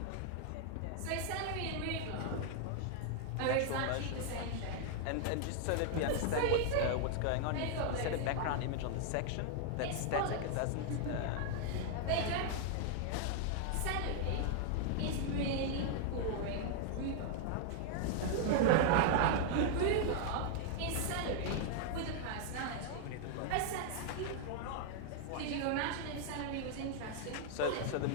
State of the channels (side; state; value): both; different; correlation 0.00